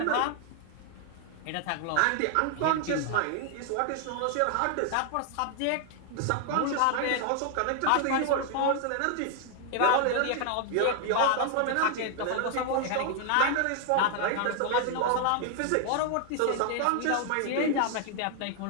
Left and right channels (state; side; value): different; both; correlation 0.00